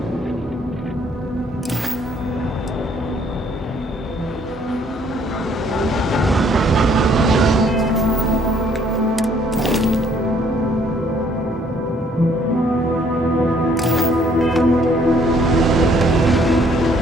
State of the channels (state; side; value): normal; both; correlation 0.63